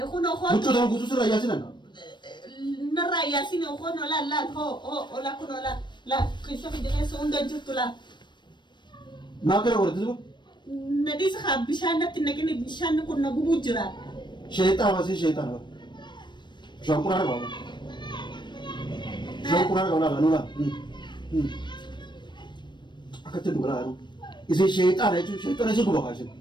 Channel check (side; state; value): right; late; 0.22 ms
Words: أخوان وتشو ده كوسوس لا ياسين نرى ياسين أخوان لا هو لا كنا لا كيف في جنة سوندا جت لا ما كره ورد أزوبا نديس خاب بيشان نتنقل بيشان كنا بوجرا شيطان واسي شيطان شو كورا ولا شو كورا ولا نولا أكتر دولا أنا إذا شيطان هيجو شيطان هيجو بقاشين